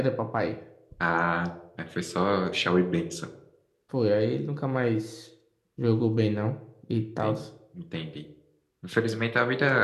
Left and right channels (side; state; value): both; identical; correlation 1.00